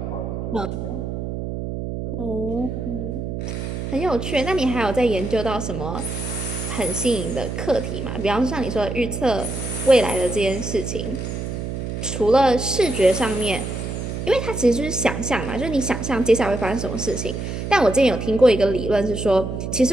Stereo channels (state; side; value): noise; right; hum, 5 dB below the sound